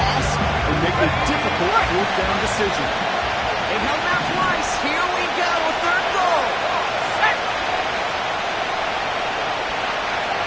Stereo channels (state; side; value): identical; both; correlation 1.00